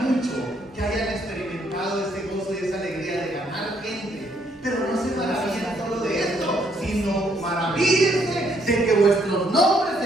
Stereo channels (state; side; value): normal; both; correlation 0.70